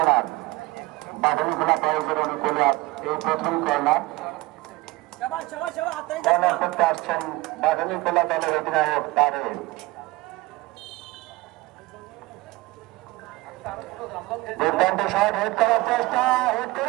বাদুড়িখোলা বয়েজের অনুকূলে এই প্রথম কর্নার। শাবাশ শাবাশ শাবাশ হাতে কর্নার করতে আসছেন বাদুড়িখোলা দলের অধিনায়ক তারেক। দুর্দান্ত শট হিট করার চেষ্টা, হিট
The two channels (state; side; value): quieter; left; 21.2 dB